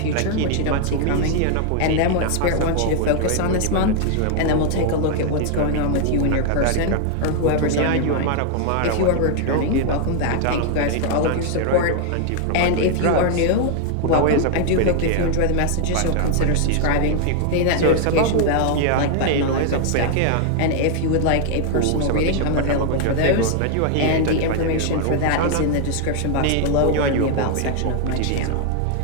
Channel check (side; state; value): both; different; correlation 0.00